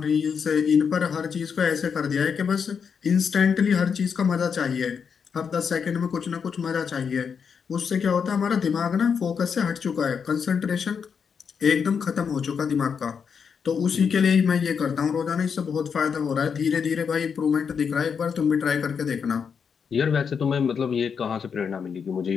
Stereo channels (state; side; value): quieter; right; 6.5 dB